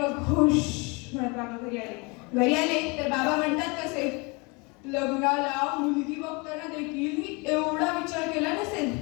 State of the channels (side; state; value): right; quieter; 28.7 dB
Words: खुश म्हणत बाबा घरी आले तर बाबा म्हणतात कसे, लग्नाला मुलगी बघताना देखील मी एवढा विचार केला नसेल.